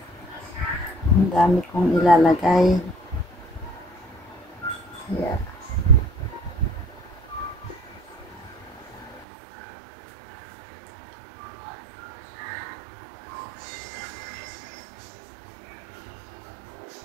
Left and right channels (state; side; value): drops out; left; at 9.2 s